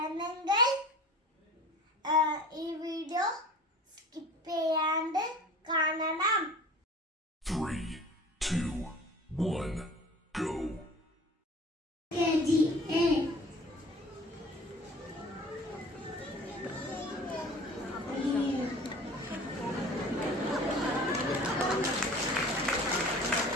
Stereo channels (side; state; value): both; normal; correlation 0.43